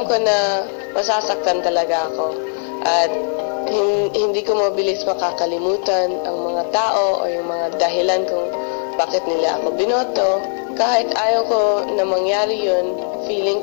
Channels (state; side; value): silent; right; digital silence